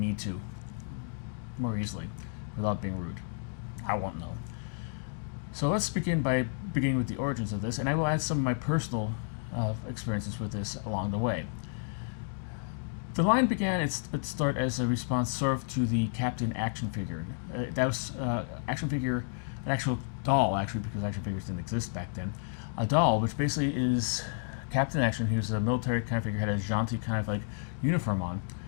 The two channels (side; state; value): right; silent; digital silence